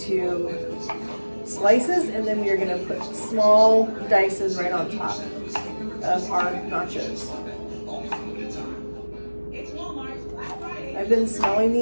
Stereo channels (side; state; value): both; inverted; correlation -1.00